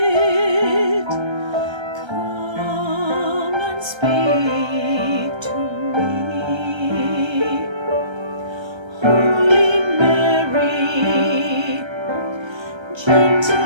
come and speak to me.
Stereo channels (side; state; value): left; late; 1.3 ms